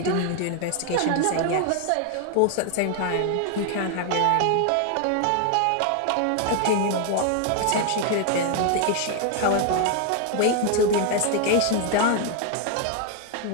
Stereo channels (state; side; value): different; both; correlation 0.00